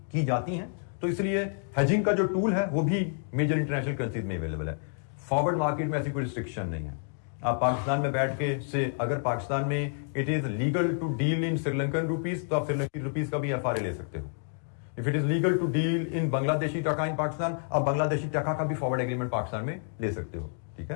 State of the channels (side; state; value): right; silent; 59 dB below the other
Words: की जाती हैं। तो इसलिए हेजिंग का जो टूल है वो भी मेजर इंटरनेशनल करेंसीज में अवेलेबल है। फॉरवर्ड मार्केट में ऐसी कोई रिस्ट्रिक्शन नहीं है। आप पाकिस्तान में बैठ के से अगर पाकिस्तान में it is legal to deal in Sri Lankan rupees तो आप श्रीलंकन रुपीज का भी एफआरए ले सकते हो। If it is legal to deal in Bangladeshi taka in Pakistan, आप बांग्लादेशी टका का भी फॉरवर्ड एग्रीमेंट पाकिस्तान में ले सकते हो, ठीक